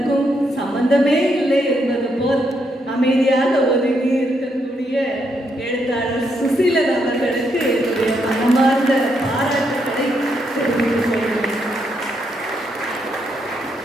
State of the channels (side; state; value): both; normal; correlation 0.78